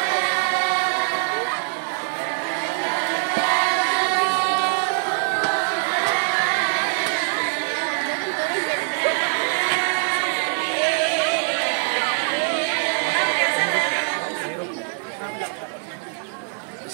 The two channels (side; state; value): left; silent; digital silence